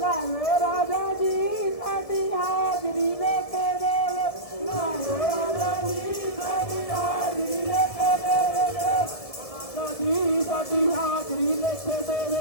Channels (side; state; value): right; late; 1.7 ms